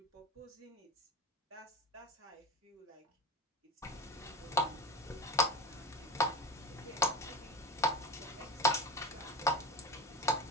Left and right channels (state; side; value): normal; both; correlation 0.29